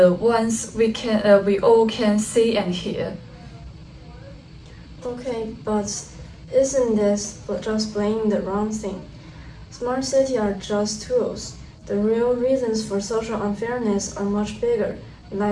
ones we all can see and hear. Okay, but isn't this just playing the wrong thing? Smart cities are just tools. The real reasons for social unfairness are much bigger,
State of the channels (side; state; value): both; identical; correlation 1.00